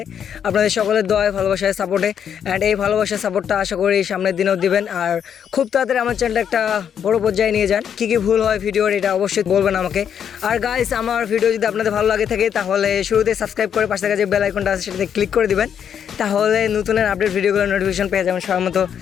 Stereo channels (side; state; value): right; quieter; 8.4 dB